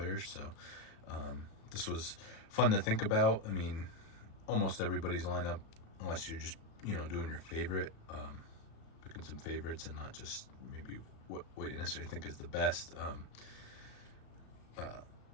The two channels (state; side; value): late; right; 36 ms